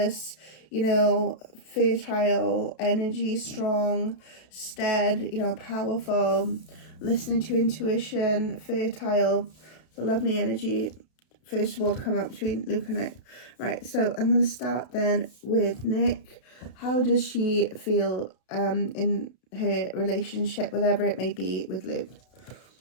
you know, fertile energy, strong, steady, you know, powerful, listening to intuition, fertile, the lovely energy. First of all, to come up between Luke and Nic. Right, so I'm going to start then with Nic. How does she feel in her relationship, whatever it may be, with Luke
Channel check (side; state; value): right; late; 32 ms